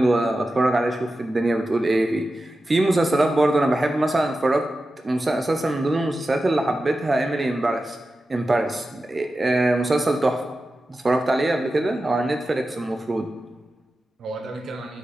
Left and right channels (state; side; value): normal; both; correlation 0.93